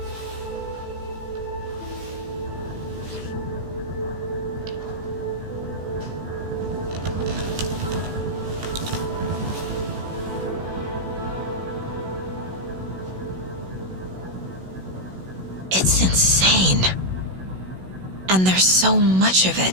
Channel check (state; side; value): late; left; 16 ms